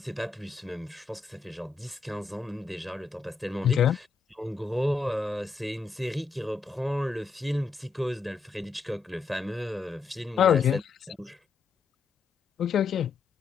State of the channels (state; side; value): quieter; right; 4.8 dB